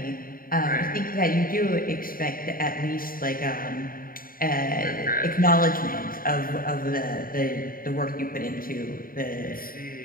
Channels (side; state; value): right; late; 0.41 ms